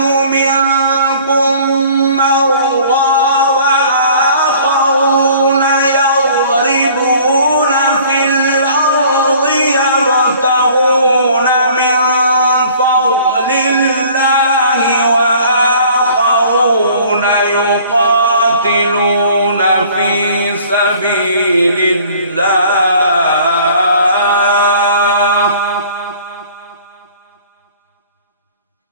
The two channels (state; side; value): inverted; both; correlation -0.51